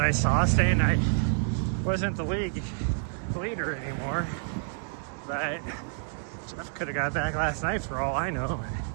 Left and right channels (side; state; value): left; silent; digital silence